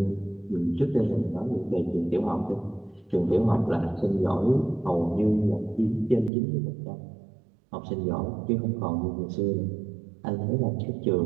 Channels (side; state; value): left; drops out; at 6.3 s